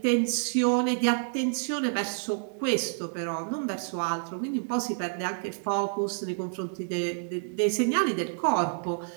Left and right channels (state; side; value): silent; left; digital silence